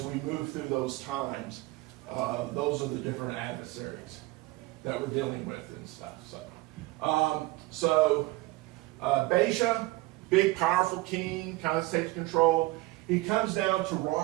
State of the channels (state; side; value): quieter; left; 20.8 dB